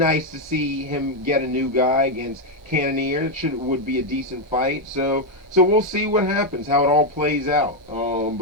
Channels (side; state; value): both; normal; correlation 0.02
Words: to see him get a new guy against Cannonier. Would be a decent fight. So we'll see what happens, how it all plays out.